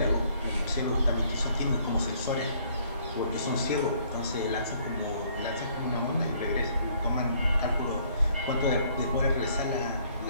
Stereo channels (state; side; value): inverted; both; correlation -0.63